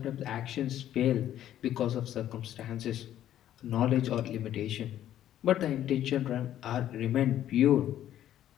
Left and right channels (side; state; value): right; quieter; 11.8 dB